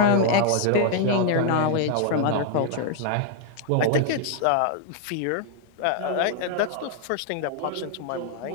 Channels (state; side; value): different; both; correlation 0.00